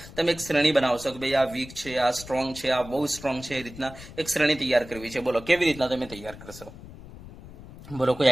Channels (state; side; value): noise; left; rumble, 16 dB below the sound